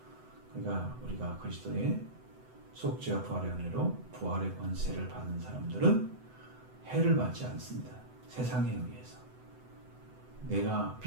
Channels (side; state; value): left; late; 7.9 ms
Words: 그러니까 우리가 그리스도의 속죄와 부활의 은혜로 부활의 권세를 받은 사람들은 해를 받지 않습니다. 세상에 의해서. 내가